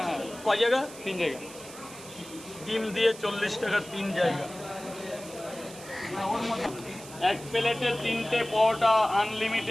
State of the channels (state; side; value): noise; right; hiss, 16 dB below the sound